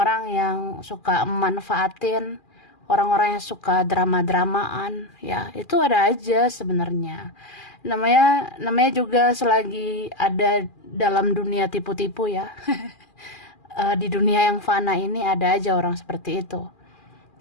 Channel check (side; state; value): right; late; 2.4 ms